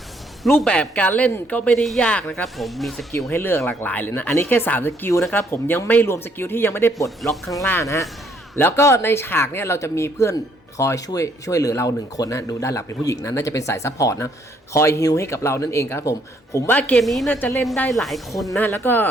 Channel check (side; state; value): both; normal; correlation 0.68